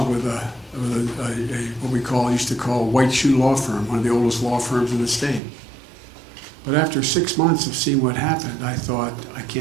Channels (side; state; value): left; drops out; at 5.4 s